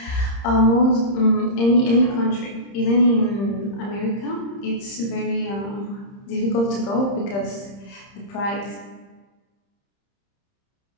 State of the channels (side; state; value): right; late; 30 ms